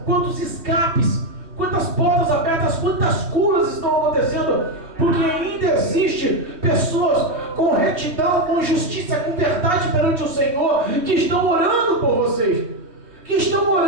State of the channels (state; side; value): late; left; 3.1 ms